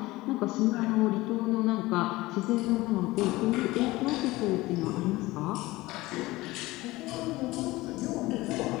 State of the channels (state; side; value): quieter; right; 19.5 dB